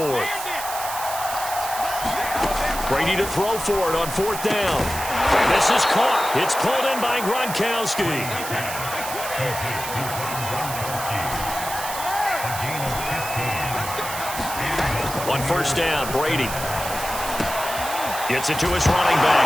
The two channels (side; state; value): right; noise; hiss, 8 dB below the sound